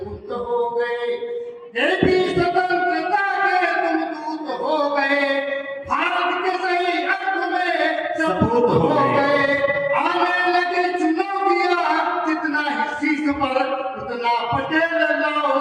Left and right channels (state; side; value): identical; both; correlation 1.00